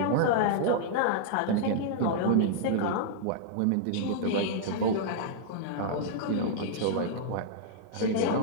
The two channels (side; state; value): both; different; correlation -0.01